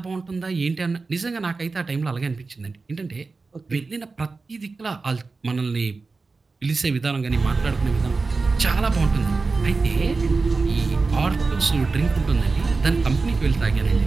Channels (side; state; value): left; quieter; 4.0 dB